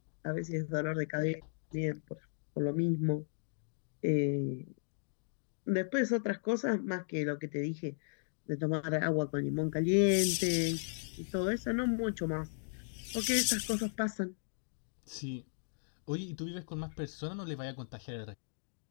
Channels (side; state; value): right; silent; digital silence